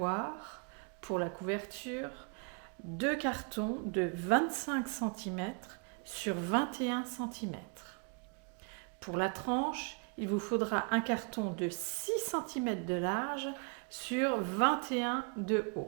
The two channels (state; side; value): quieter; left; 35.8 dB